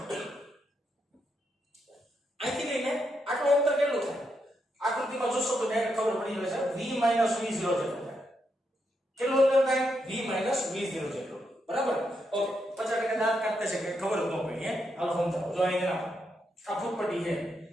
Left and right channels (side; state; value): both; normal; correlation 0.81